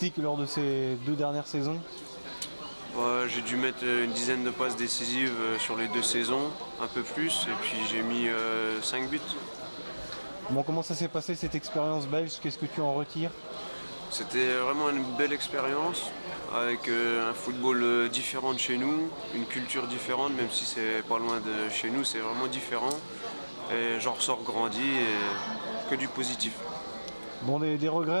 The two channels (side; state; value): both; inverted; correlation -1.00